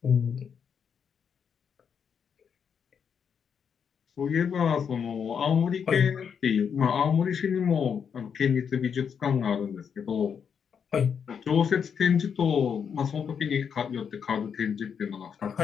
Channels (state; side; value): quieter; right; 7.1 dB